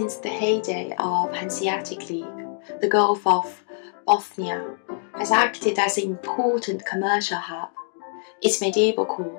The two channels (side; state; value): right; silent; digital silence